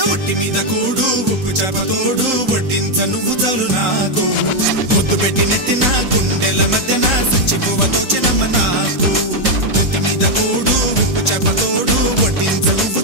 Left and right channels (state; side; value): late; left; 3.8 ms